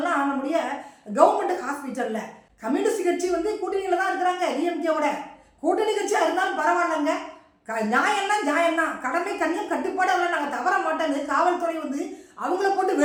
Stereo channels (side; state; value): both; identical; correlation 1.00